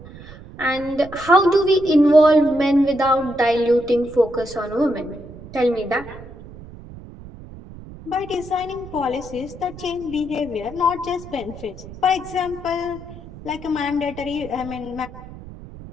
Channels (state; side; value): noise; right; rumble, 16 dB below the sound